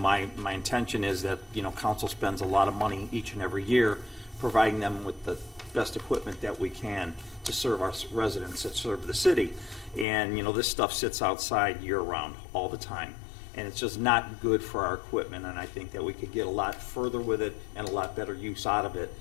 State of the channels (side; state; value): right; drops out; at 10.1 s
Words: intention is that council spends a lot of money each and every year providing them with the best equipment that we can to serve our residents, that serve the city. And this stuff sits outside year round all the time. And it's just not good for our equipment, and I think that we could get a lot further with it and a lot better use out of it